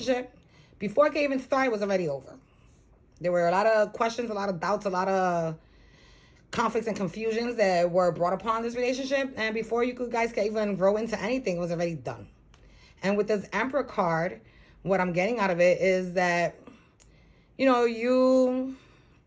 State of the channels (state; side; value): identical; both; correlation 1.00